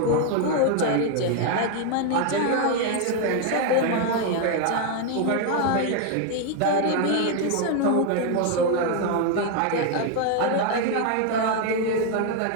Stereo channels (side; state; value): both; different; correlation 0.01